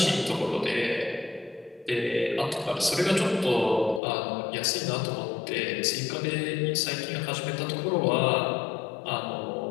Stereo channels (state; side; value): drops out; right; at 4.0 s